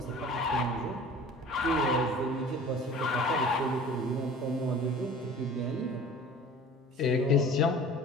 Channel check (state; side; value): normal; both; correlation 0.43